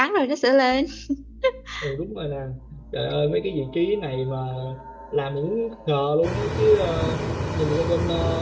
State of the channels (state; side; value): identical; both; correlation 1.00